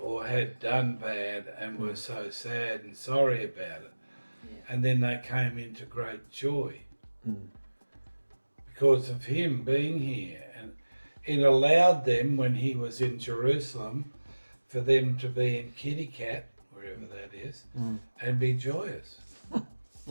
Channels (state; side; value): inverted; both; correlation -1.00